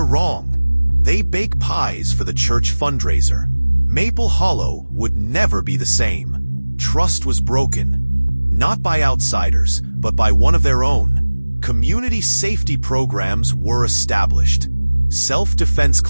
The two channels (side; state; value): both; inverted; correlation -1.00